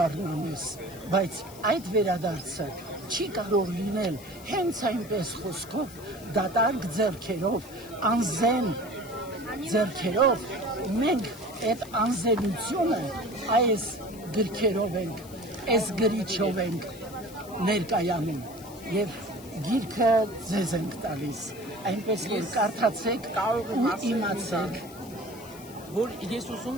բայց այդ վերադարձը չի կարող լինել հենց այնպես խոսքով, դատարկ ձեռքերով, անզեն ձեռքերով, մենք այդ անզենությունը այս գրքերով ենք, այս գրիչով ենք ներկայանում և գիրքը ձեզ ենք տալիս, այնպես որ կարդացեք ու իմացեք, որ ես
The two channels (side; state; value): left; noise; hiss, 19 dB below the sound